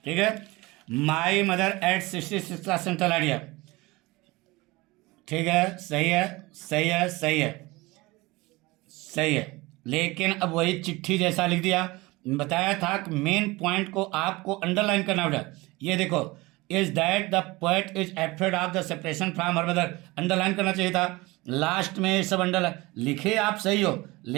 ठीक है। माई मदर एट 66 का सेंट्रल आइडिया। ठीक है, सही है, सही है, सही है, सही है। लेकिन अब वही चिट्ठी जैसा लिख दिया। बताया था कि मेन पॉइंट को आपको अंडरलाइन करना होगा। ये देखो, is that the poet is afraid of the separation from her mother, underline करना चाहिए था। लास्ट में ये सब अंडरलाइन लिखे, आप सही हो,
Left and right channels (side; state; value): left; quieter; 22.0 dB